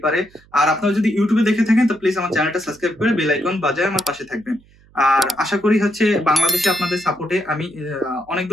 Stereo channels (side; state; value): right; noise; hum, 29 dB below the sound